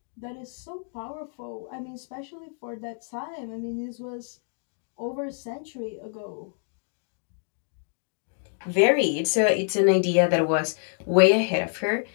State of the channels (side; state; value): right; silent; 60 dB below the other